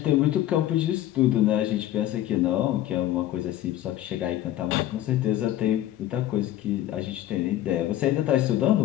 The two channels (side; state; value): right; quieter; 13.2 dB